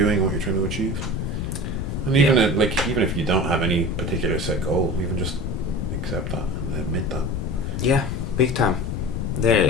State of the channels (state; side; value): noise; left; rumble, 2 dB below the sound